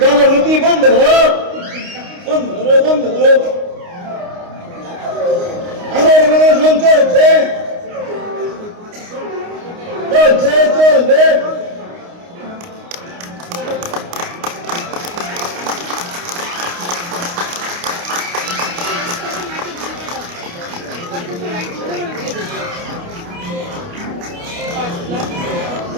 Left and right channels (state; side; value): late; left; 29 ms